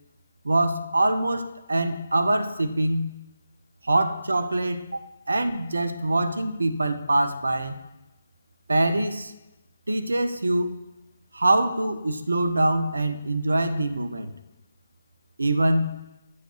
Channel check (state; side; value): inverted; both; correlation -0.93